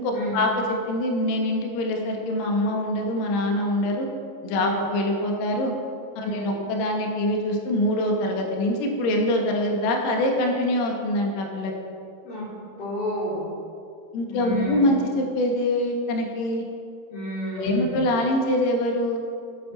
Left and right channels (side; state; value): right; late; 26 ms